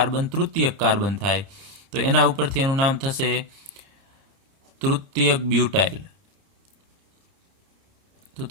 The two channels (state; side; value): late; left; 30 ms